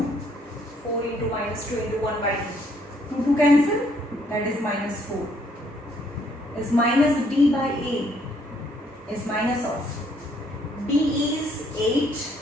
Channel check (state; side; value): normal; both; correlation 0.67